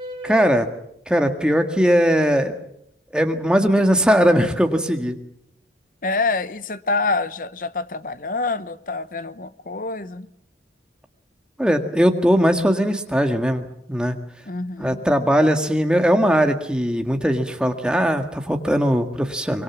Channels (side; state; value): both; normal; correlation 0.78